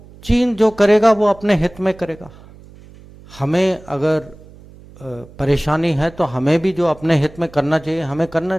चीन जो करेगा वो अपने हित में करेगा। हमें अगर परेशानी है तो हमें भी जो अपने हित में करना चाहिए हमें करना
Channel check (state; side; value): noise; right; hum, 22 dB below the sound